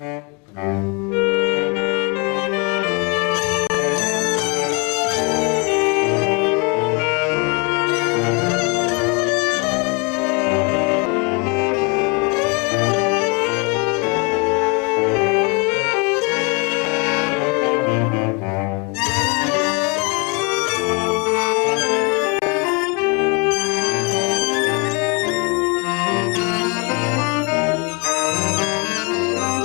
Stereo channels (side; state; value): right; quieter; 31.8 dB